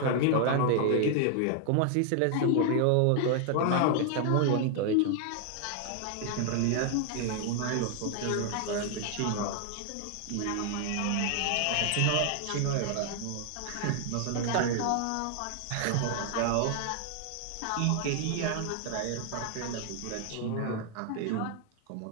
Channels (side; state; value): both; different; correlation 0.00